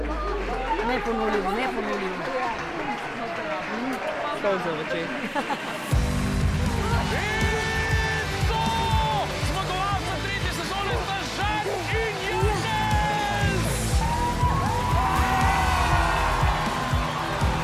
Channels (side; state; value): both; identical; correlation 1.00